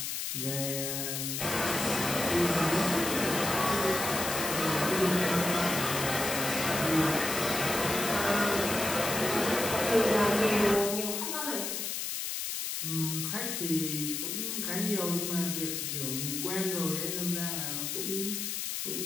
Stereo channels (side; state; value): left; noise; hiss, 3 dB below the sound